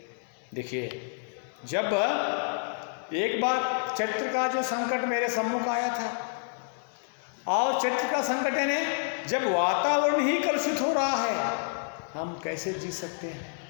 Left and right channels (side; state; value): right; silent; digital silence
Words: देखिए, जब एक बार चरित्र का जो संकट मेरे सम्मुख आया था और चरित्र का संकट यानी जब वातावरण ही कलुषित हो रहा है, हम कैसे जी सकते हैं।